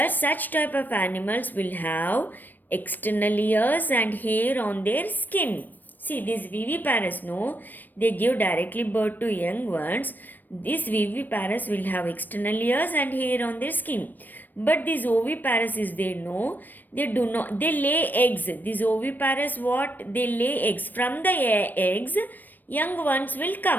such type of animals will have external ears and hair on their skin. See, these viviparous, no, they give directly birth to young ones. These viviparous will have external ears and hair on their skin. But these oviparous is there, no, they do not, they lay eggs. These oviparous, what? They lay eggs. From the eggs, young ones will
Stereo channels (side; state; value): right; late; 0.090 ms